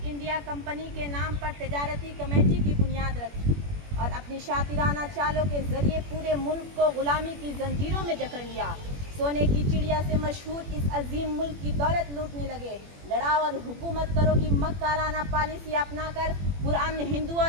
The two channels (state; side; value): late; left; 21 ms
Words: انڈیا کمپنی کے نام پر تجارتی کمیٹی کی بنیاد رکھی اور اپنی شاطرانہ چالوں کے ذریعے پورے ملک کو غلامی کی زنجیروں میں جکڑ لیا. سونے کی چڑیا سے مشہور اس عظیم ملک کی دولت لوٹنے لگے. لڑاؤ اور حکومت کرو کی مکارانہ پالیسی اپنا کر پرامن ہندو